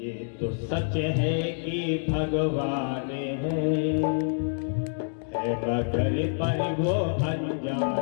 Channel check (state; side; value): silent; right; digital silence